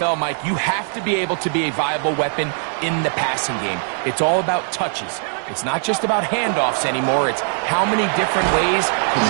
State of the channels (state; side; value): silent; left; 56 dB below the other